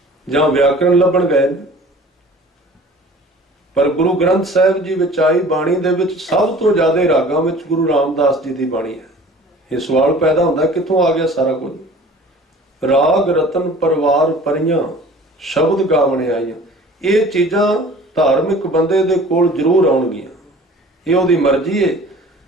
ਜਾਂ ਵਿਆਕਰਣ ਲੱਭਣ ਗਏ ਨੇ। ਪਰ ਗੁਰੂ ਗ੍ਰੰਥ ਸਾਹਿਬ ਜੀ ਵਿੱਚ ਆਈ ਬਾਣੀ ਦੇ ਵਿੱਚ ਸਭ ਤੋਂ ਜ਼ਿਆਦਾ ਰਾਗਾਂ ਵਿੱਚ ਗੁਰੂ ਰਾਮਦਾਸ ਜੀ ਦੀ ਬਾਣੀ ਹੈ। ਇਹ ਸਵਾਲ ਪੈਦਾ ਹੁੰਦਾ, ਕਿੱਥੋਂ ਆ ਗਿਆ ਸਾਰਾ ਕੁਝ? ਰਾਗ ਰਤਨ ਪਰਵਾਰ ਪਰੀਆਂ, ਸ਼ਬਦ ਗਾਵਣੇ ਆਈਆਂ। ਇਹ ਚੀਜ਼ਾਂ ਧਾਰਮਿਕ ਬੰਦੇ ਦੇ ਕੋਲ ਜ਼ਰੂਰ ਆਉਣਗੀਆਂ, ਇਹ ਉਹਦੀ ਮਰਜ਼ੀ ਹੈ।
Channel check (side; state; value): both; normal; correlation 0.45